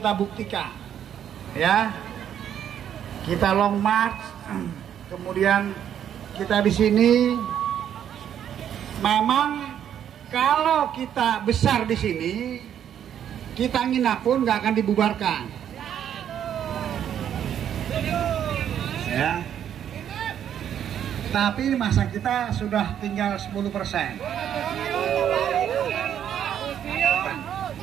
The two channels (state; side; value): quieter; left; 9.6 dB